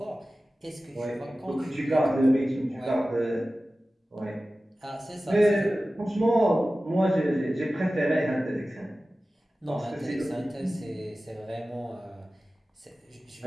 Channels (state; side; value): normal; both; correlation 0.96